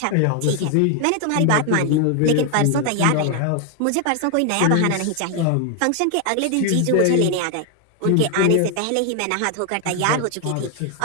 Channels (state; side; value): different; both; correlation 0.00